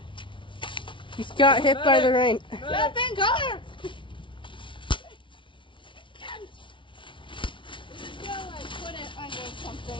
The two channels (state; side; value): late; right; 0.24 ms